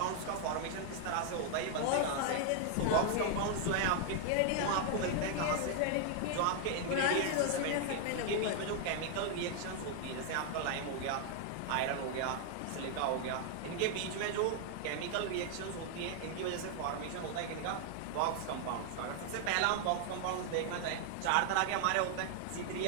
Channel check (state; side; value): different; both; correlation 0.00